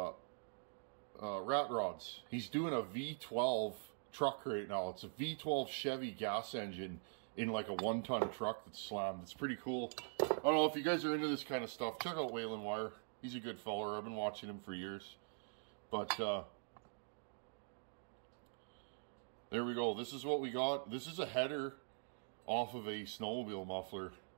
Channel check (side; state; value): left; silent; digital silence